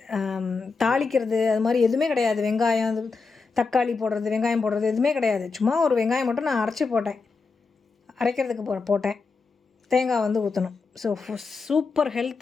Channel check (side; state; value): right; quieter; 4.5 dB